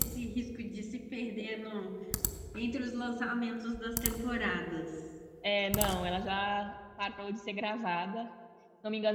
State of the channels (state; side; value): identical; both; correlation 1.00